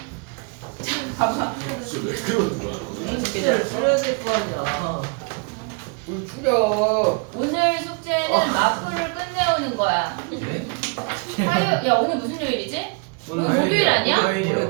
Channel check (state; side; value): quieter; left; 34.9 dB